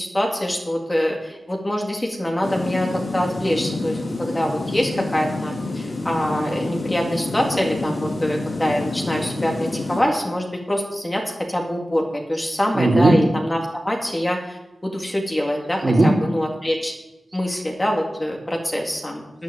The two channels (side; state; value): both; normal; correlation 0.95